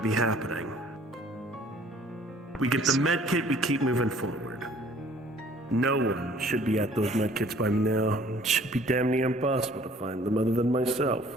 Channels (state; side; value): normal; both; correlation 0.55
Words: be happening. We get the med kit, we keep moving forward. No one should be at those med kits by now. It should be damn near impossible to find them other than myself.